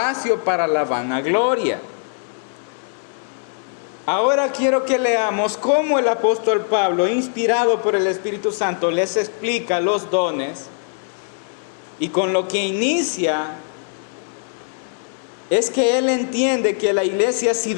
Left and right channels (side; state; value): right; silent; 60 dB below the other